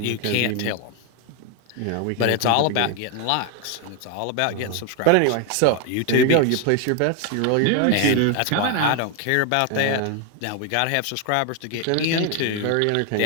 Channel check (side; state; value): both; different; correlation 0.01